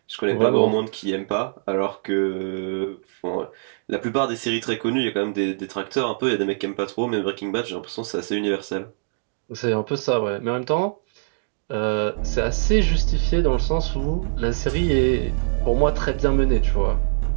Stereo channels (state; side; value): silent; left; digital silence